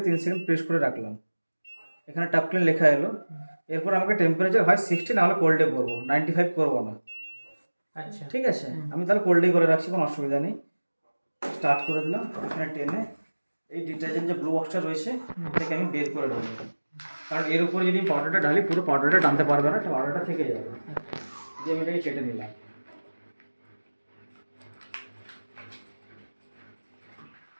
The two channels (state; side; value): inverted; both; correlation -1.00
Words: 3 সেকেন্ড প্রেস করে রাখলাম। এখানে টাপ ক্লিন লেখা এলো। এরপর আমাকে টেম্পারেচার হয় 60, নাহলে কোল্ডে করবো, 95 করবো না। আচ্ছা ঠিক আছে, আমি তাহলে কোল্ডেই করে রাখছি, কোনো অসুবিধা নেই। স্টার্ট করে দিলাম। এখানে টেনে এই ডিটারজেন্ট যে ব্লু বক্সটা রয়েছে এটাকে আমি বের করে দেবো, কারণ এর উপরে যদি পাউডারটা ঢালি পুরো পাউডারটা টানতে পারবে না, পাউডারটা থেকে যাবে। যে আমি এটাকে কেটে নিলাম।